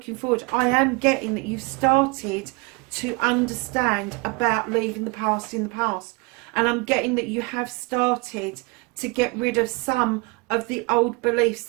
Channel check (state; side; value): quieter; left; 27.2 dB